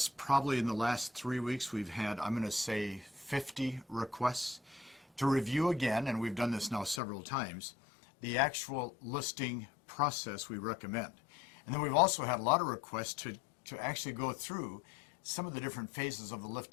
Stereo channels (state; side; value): drops out; right; at 7.0 s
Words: probably in the last 3 weeks, we've had, I'm going to say, 50 requests to review again, and we've done this now several times, the actual listing process we recommend. And then we've also had a lot of requests to actually go through some of the different phases of